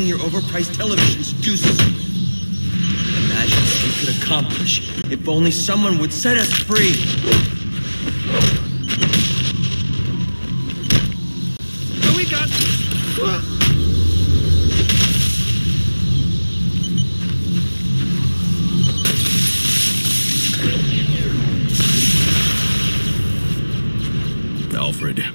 your overpriced television seduces you with. Imagine what we could accomplish if only someone would set us free. So we got... Alfred,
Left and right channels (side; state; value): both; inverted; correlation -1.00